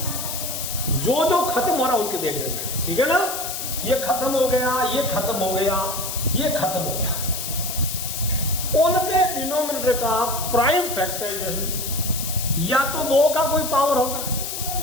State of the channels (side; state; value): left; noise; hiss, 5 dB below the sound